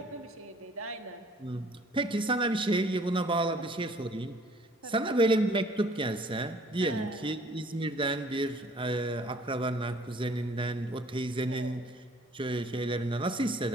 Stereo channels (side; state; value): both; normal; correlation 0.56